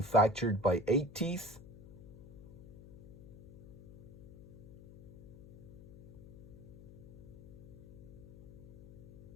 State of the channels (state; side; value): noise; left; hum, 17 dB below the sound